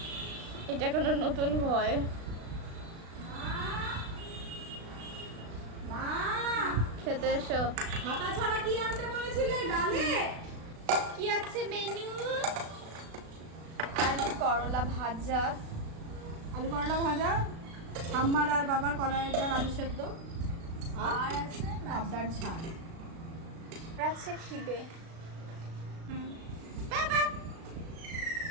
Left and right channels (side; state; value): left; late; 36 ms